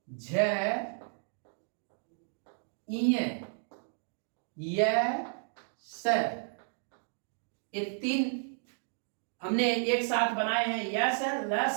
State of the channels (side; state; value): left; silent; digital silence